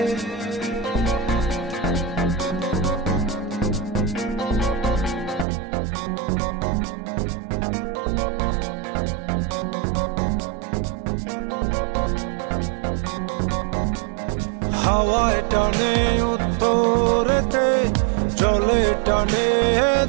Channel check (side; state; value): left; drops out; at 5.5 s